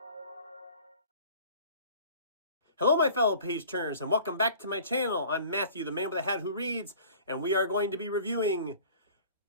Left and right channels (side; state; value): both; inverted; correlation -0.47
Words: Hello, my fellow page turners, and welcome back to my channel. I'm Matthew, the man with a hat who reads, and we are going to be reviewing